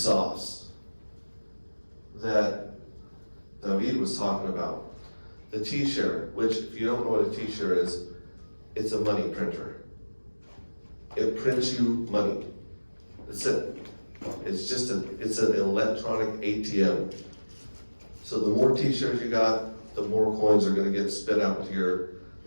that David was talking about, the T-share, which if you don't know what a T-share is, it's a money printer. It prints you money. That's it. It's an electronic ATM. So the more T-shares you got, the more coins are going to get spit out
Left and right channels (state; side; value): inverted; both; correlation -1.00